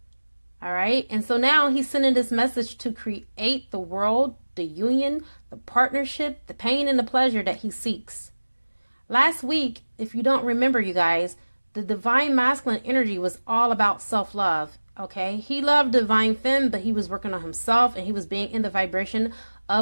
All right. And so now he's sending this message to create the world, the union, the partnership, the pain and the pleasure that he seeks. Last week, if you don't remember, you guys, the divine masculine energy was all about self-love. Okay. He loved divine femme, but he was working on himself, and he was being in the vibration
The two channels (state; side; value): inverted; both; correlation -1.00